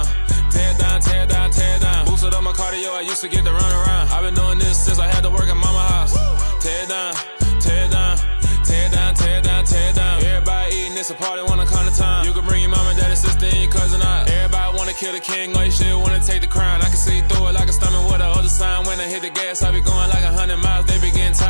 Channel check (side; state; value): both; inverted; correlation -1.00